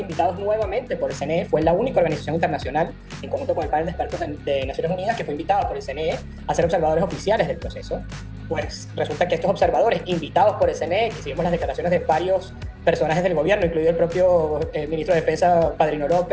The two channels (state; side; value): identical; both; correlation 1.00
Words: nuevamente por el CNE. Fue la única organización internacional, en conjunto con el panel de expertos de Naciones Unidas, que fue invitada por el CNE a ser observadores oficiales del proceso. pues resulta que estos observadores invitados por el CNE, que seguimos las declaraciones de varios personajes del gobierno, incluido el propio ministro de Defensa, Padrino